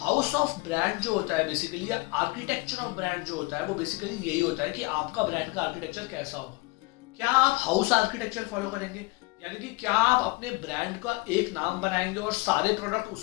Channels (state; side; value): quieter; right; 24.5 dB